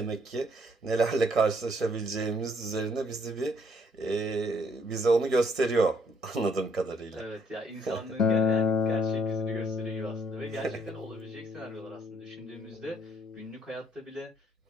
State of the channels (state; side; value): normal; both; correlation 0.67